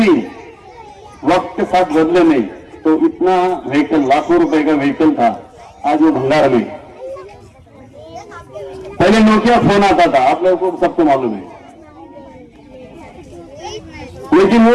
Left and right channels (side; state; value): both; identical; correlation 1.00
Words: वक्त के साथ बदले नहीं। तो इतना व्हीकल, लाखों रुपए का व्हीकल था, आज वो भंगार में। पहले नोकिया फोन आता था, आप लोगों को सबको मालूम है, लेकिन